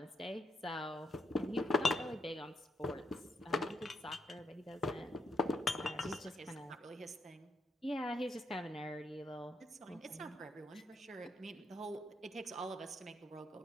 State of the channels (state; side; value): normal; both; correlation 0.78